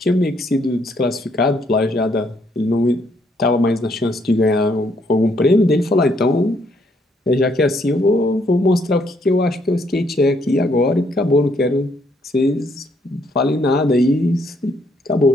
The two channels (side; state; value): both; normal; correlation 0.71